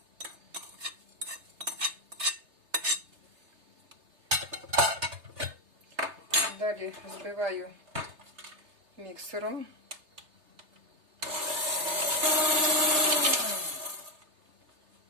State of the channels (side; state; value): left; late; 3.3 ms